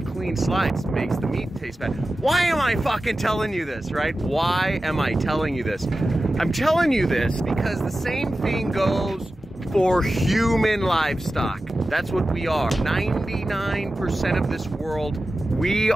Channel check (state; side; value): normal; both; correlation 0.94